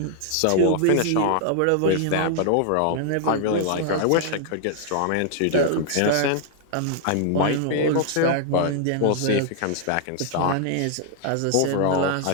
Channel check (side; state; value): both; different; correlation 0.00